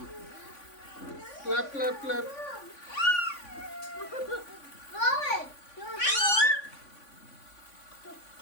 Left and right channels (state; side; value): late; right; 3.5 ms